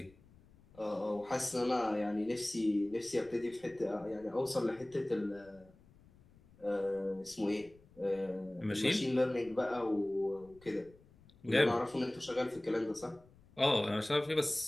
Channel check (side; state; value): left; noise; rumble, 26 dB below the sound